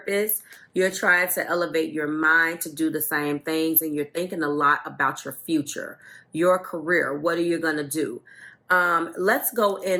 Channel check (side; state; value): both; identical; correlation 1.00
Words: You're trying to elevate your mind to do the same things, and you're thinking a lot about your future, your career. What are you going to do? Let's go